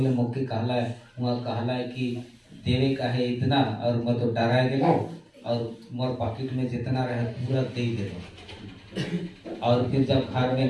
मोके कहला है वहाँ कहला है कि देवे का है इतना, और मैं तो डरा गेलो और मोर पॉकेट में जितना रहे पूरा दे देलो। और फिर जब घर में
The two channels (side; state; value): both; identical; correlation 1.00